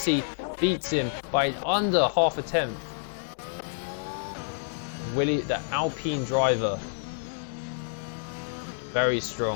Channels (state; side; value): silent; right; 59 dB below the other